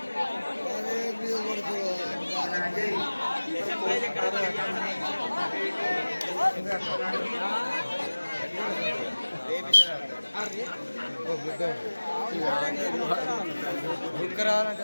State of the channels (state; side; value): inverted; both; correlation -1.00